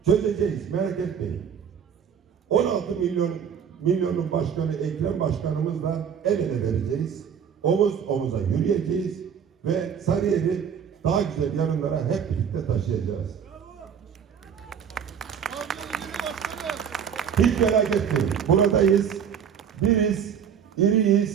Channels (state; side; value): quieter; left; 7.7 dB